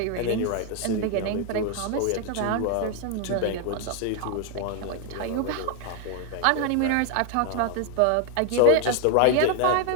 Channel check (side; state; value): both; different; correlation 0.00